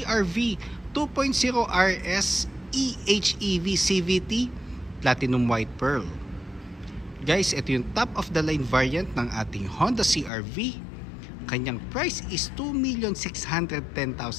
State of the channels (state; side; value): drops out; right; at 10.3 s